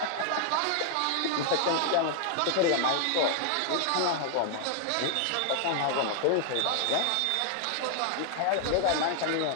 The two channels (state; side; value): different; both; correlation 0.00